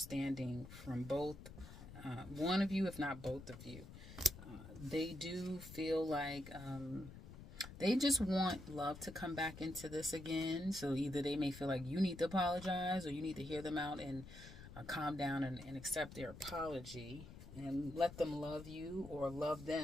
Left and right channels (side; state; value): left; noise; rumble, 14 dB below the sound